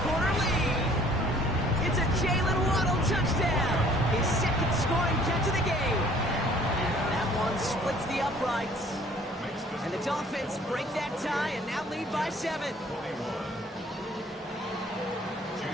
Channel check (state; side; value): normal; both; correlation 0.55